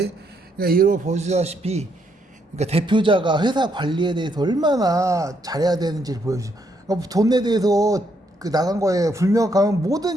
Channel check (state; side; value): normal; both; correlation 0.74